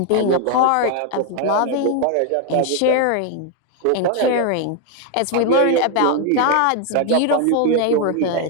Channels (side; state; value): both; different; correlation 0.00